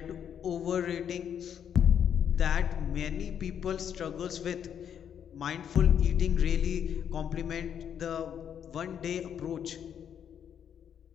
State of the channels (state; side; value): quieter; right; 8.7 dB